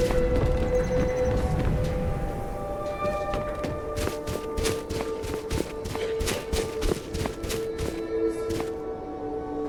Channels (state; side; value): identical; both; correlation 1.00